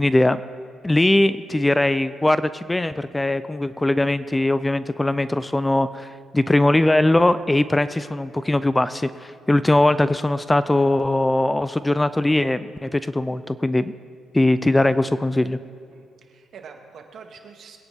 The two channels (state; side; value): normal; both; correlation 0.98